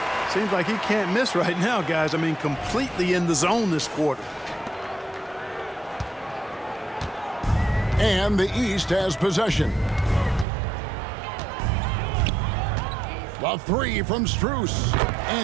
Seems like he can't miss right now, guys. I mean, completely in the zone this quarter. And the East has possession. A three from Strus.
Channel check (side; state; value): left; drops out; at 10.5 s